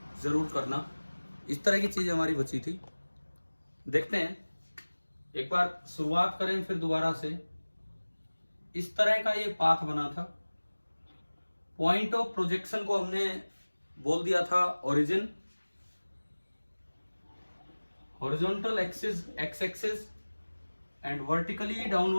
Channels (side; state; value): both; inverted; correlation -1.00